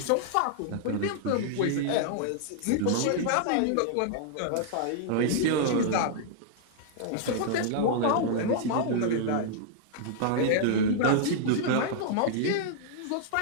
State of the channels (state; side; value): different; both; correlation -0.01